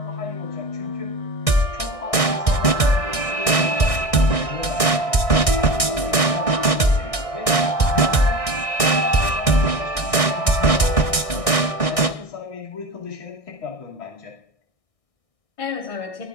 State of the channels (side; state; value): right; late; 1.6 ms